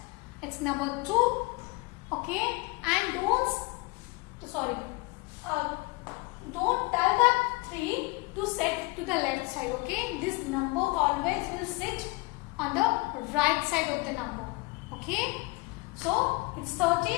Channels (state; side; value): quieter; right; 25.4 dB